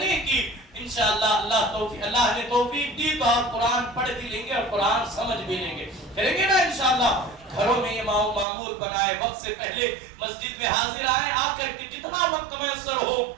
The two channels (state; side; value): drops out; left; at 8.5 s